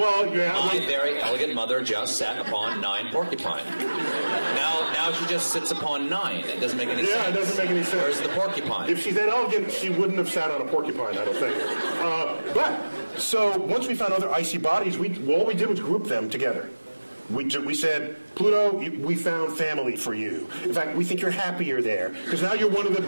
yeah. My very elegant mother just sat upon 9 porcupine. Now she just sits upon 9. It doesn't make any sense. Yeah, it doesn't make any sense. Where's the porcupine? If she's that elegant, she wouldn't have sat on a porcupine, I don't think. So once we found other icy bodies, all we did was group them together. We said, Pluto, we found family for you. In fact, we think you're happier there, because now you're one of the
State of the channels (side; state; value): both; inverted; correlation -1.00